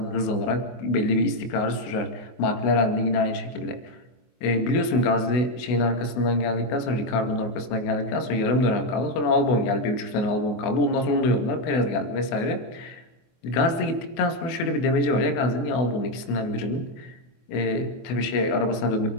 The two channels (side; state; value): right; late; 24 ms